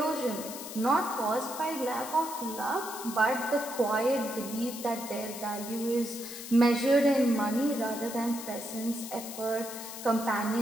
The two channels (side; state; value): left; noise; hiss, 10 dB below the sound